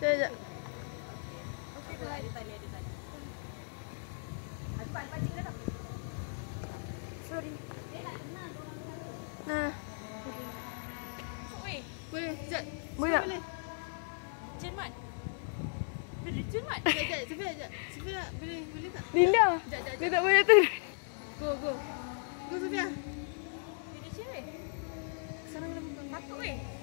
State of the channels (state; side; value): silent; right; 54 dB below the other